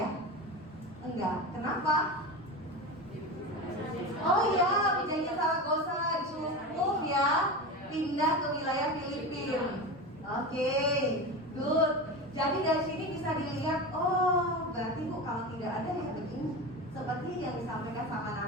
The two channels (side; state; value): both; normal; correlation 0.25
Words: Enggak. Kenapa? Oh iya, pinjanya Zaragoza cukup ya, pindah ke wilayah Filipina. Oke, good. Jadi dari sini bisa dilihat, oh berarti Bu kalau tidak ada ya begini, seperti yang disampaikan sama